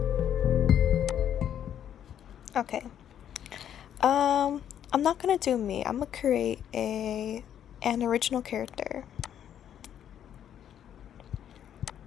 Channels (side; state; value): right; quieter; 9.9 dB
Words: Okay. I'm not gonna do me. I'm gonna create an original character.